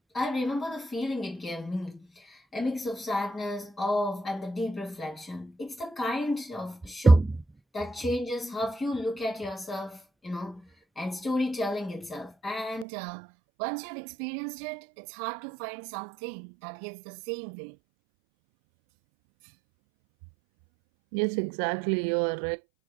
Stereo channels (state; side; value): drops out; left; at 12.9 s